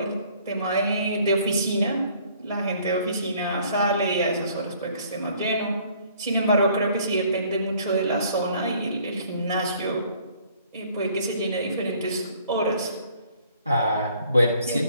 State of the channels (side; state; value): both; inverted; correlation -0.59